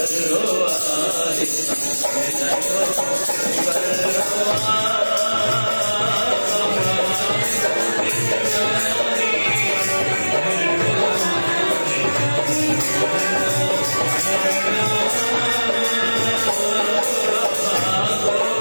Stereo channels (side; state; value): both; inverted; correlation -1.00